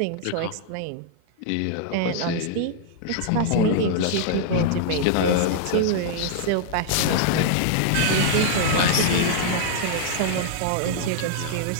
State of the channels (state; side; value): different; both; correlation -0.01